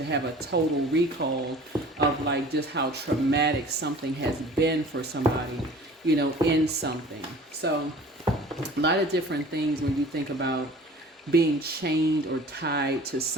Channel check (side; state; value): both; normal; correlation 0.45